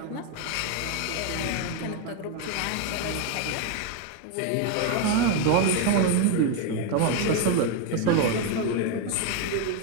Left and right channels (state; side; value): different; both; correlation 0.01